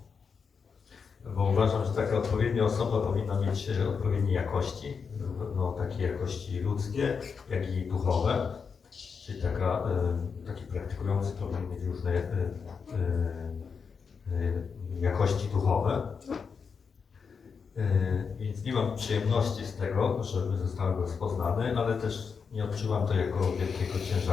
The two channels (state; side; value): quieter; right; 5.8 dB